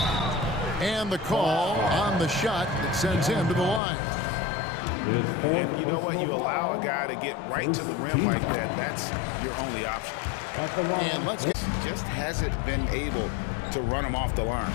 And the call on the shot that sends him to the line. And you know what? You allow a guy to get right to the rim like that. That's your only option. And let's get... Just hasn't been able to run him off the line.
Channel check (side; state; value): right; drops out; at 3.8 s